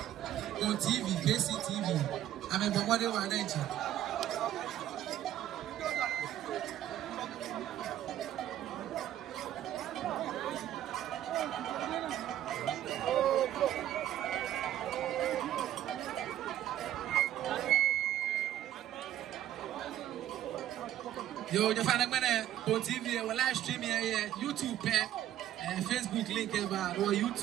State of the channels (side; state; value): left; quieter; 12.2 dB